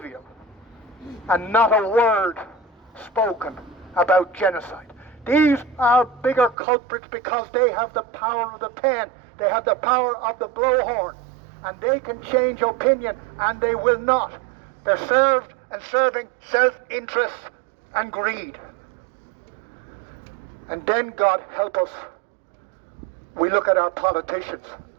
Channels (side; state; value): left; drops out; at 6.6 s